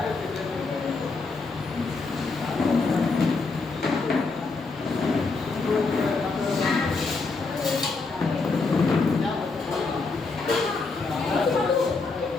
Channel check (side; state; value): right; quieter; 4.0 dB